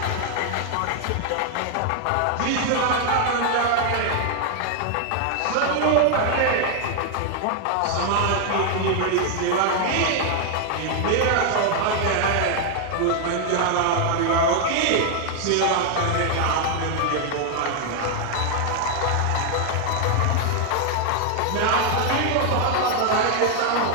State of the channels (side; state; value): both; different; correlation 0.00